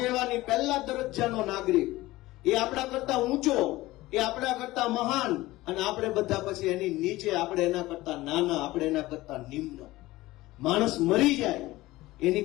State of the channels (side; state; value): right; quieter; 18.3 dB